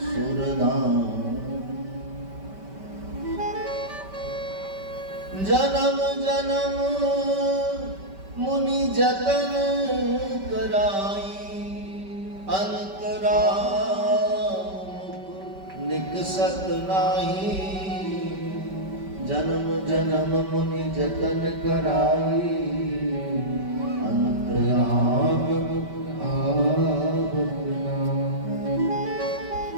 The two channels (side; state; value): left; late; 5.2 ms